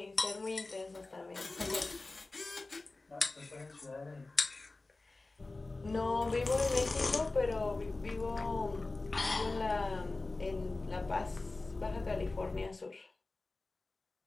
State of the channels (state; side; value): quieter; right; 3.3 dB